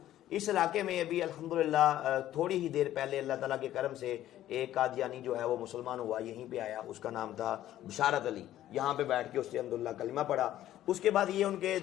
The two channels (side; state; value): right; quieter; 13.1 dB